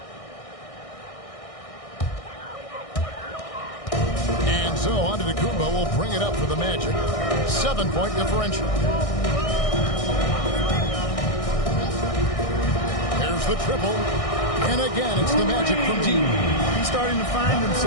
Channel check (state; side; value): late; right; 1.6 ms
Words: And so Antetokounmpo will bring it up for the Magic. 7-point differential. There's the triple. And again, it's the Magic from deep. He's starting to find